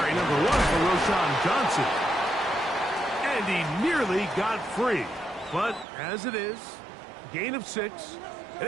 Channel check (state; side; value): drops out; left; at 5.9 s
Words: number 1 for Roschon Johnson. And he nearly got free. But as it is, gain of 6, and